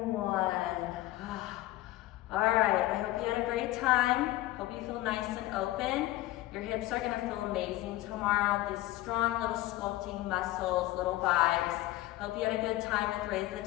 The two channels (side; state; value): right; quieter; 16.5 dB